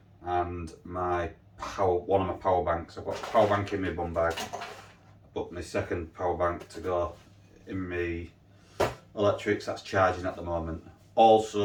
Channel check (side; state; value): both; identical; correlation 1.00